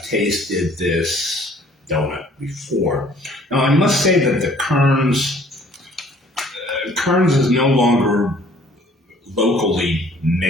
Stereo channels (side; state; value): both; normal; correlation 0.57